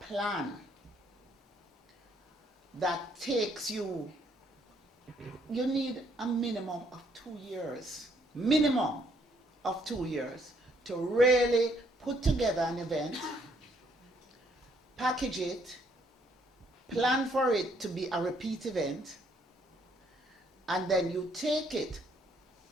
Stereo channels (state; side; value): normal; both; correlation 0.68